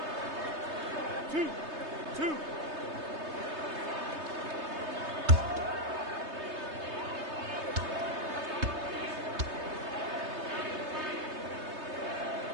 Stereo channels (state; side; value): late; left; 3.3 ms